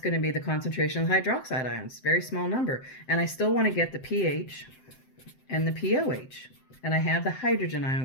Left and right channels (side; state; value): right; late; 7.7 ms